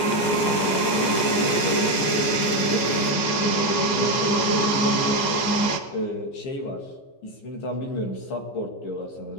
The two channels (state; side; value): late; right; 14 ms